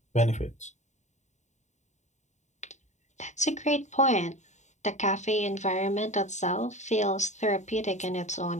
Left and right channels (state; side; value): late; right; 0.34 ms